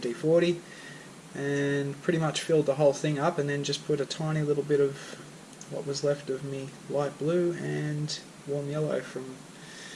and pretty much filled the whole thing up, and then just put a tiny little bit of what was left of me light blue and warm yellow from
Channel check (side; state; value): both; identical; correlation 1.00